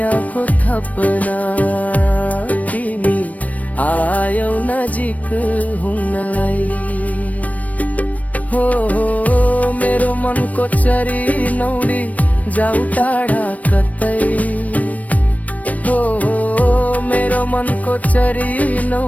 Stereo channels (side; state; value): right; late; 0.070 ms